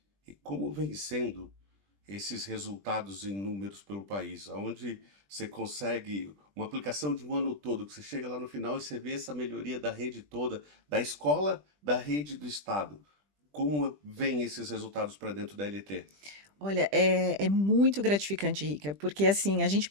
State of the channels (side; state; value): left; late; 20 ms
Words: E como vem sendo esses resultados em números pelo país, onde você consegue uma aplicação de um ano todo, que você chega lá no final e você vê essa melhoria da rede toda, da escola, da rede do estado. Como vem esses resultados para dentro da LT? Olha, é muito gratificante, Rica, porque assim, a gente